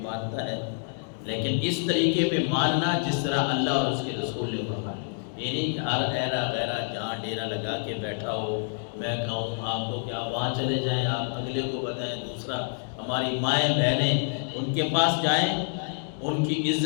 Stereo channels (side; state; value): right; silent; digital silence